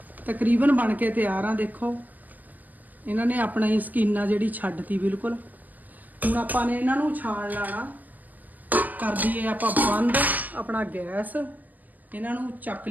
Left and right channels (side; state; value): left; late; 0.082 ms